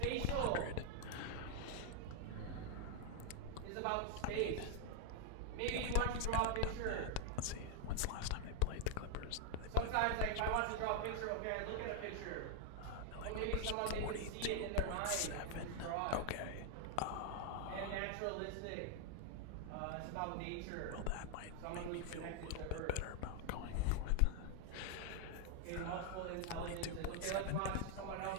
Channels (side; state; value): both; different; correlation 0.00